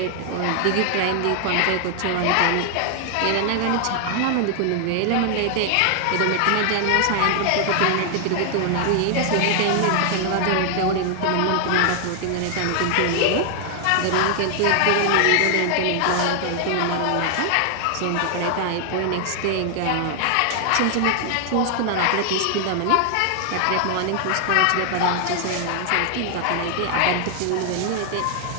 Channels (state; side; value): different; both; correlation 0.00